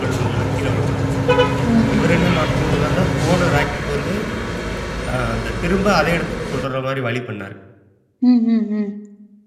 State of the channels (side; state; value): both; identical; correlation 1.00